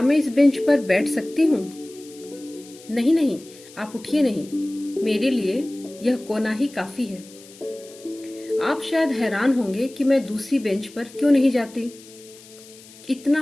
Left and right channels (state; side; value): noise; left; hiss, 21 dB below the sound